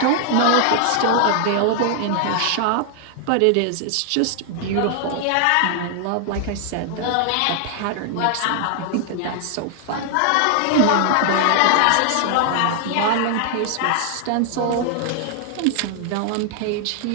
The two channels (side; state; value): both; different; correlation 0.00